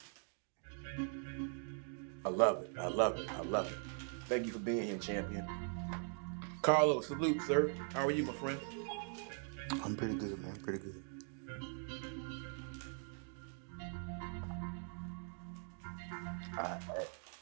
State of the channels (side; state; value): left; silent; 50 dB below the other